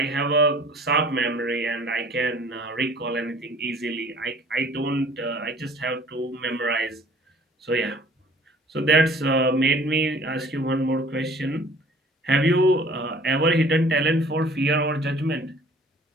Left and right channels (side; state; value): both; normal; correlation 0.51